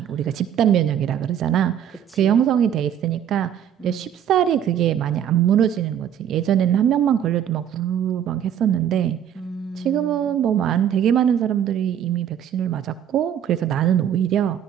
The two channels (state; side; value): quieter; left; 9.6 dB